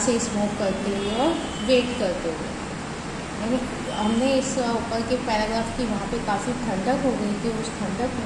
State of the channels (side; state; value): both; identical; correlation 1.00